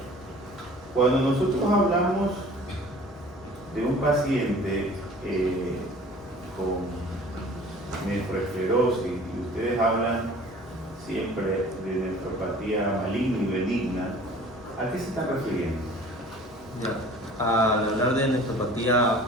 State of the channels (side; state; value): both; normal; correlation 0.47